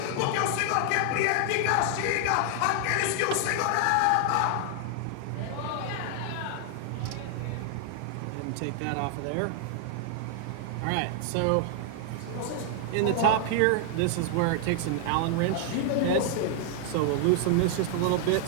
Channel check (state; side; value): different; both; correlation 0.00